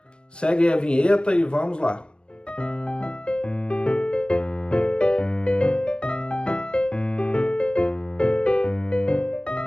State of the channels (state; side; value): late; right; 0.053 ms